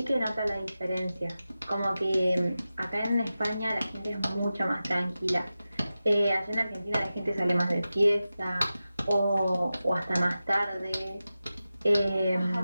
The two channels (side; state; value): both; inverted; correlation -0.94